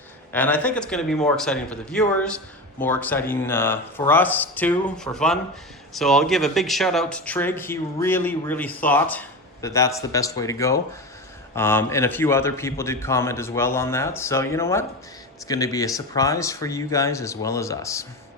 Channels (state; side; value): normal; both; correlation 0.23